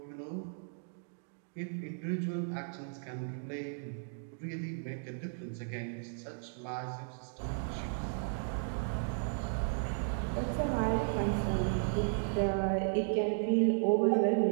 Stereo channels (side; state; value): left; silent; digital silence